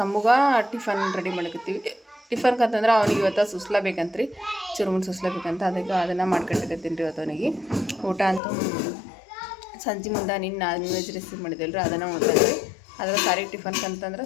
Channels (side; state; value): right; drops out; at 8.4 s